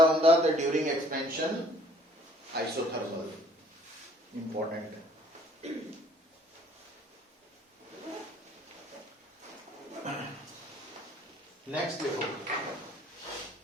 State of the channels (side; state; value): both; normal; correlation 0.58